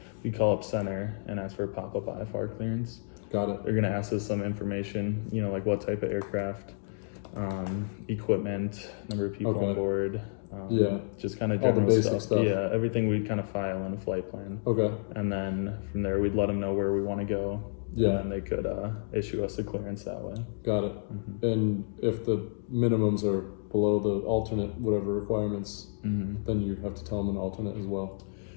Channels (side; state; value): right; silent; digital silence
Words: we call up center and ask for a pop-up IFR clearance. Got it. They're gonna ask us some information. You know, like what type of aircraft, equipment, number of people Okay. on board. Yeah. Just kind of All the general basic stuff. Yeah, everything we'd kind of file in a flight plan, Okay. and then from there we'd let them know where we want to go. Yeah. And then they could issue us a clearance that way. Got it. Mm-hmm. And if the minimums are below the alternate whatever requirements, Mm-hmm. then you have to tell them an alternate as well.